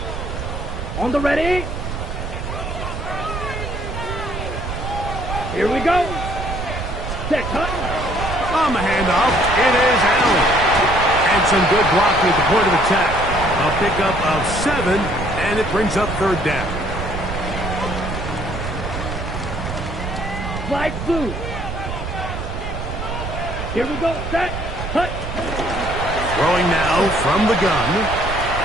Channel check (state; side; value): noise; right; rumble, 6 dB below the sound